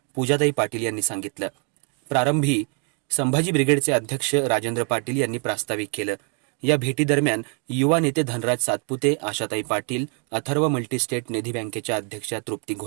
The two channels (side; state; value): left; quieter; 38.7 dB